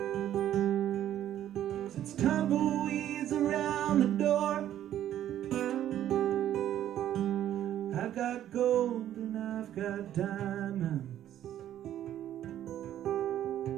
sends tumbleweeds around the door. I've got gold and I've got diamonds.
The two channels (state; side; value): quieter; left; 11.6 dB